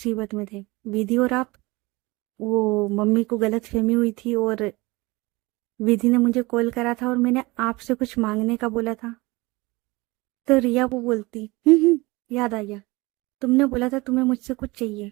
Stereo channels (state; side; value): quieter; left; 22.9 dB